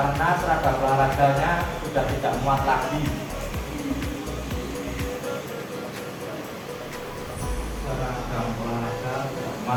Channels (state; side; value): identical; both; correlation 1.00